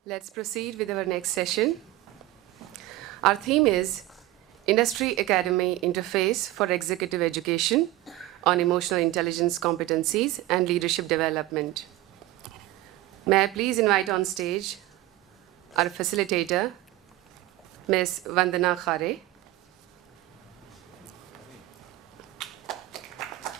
Let's proceed with our next session. Our theme is Industry Academy Interface for Executive Education on Emotional Intelligence Competencies and Leadership Development. May I please invite on stage our facilitator, Ms. Vandana Khare.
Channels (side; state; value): left; quieter; 16.7 dB